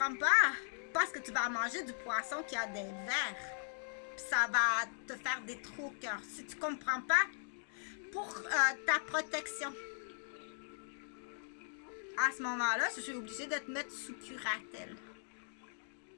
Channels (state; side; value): silent; right; digital silence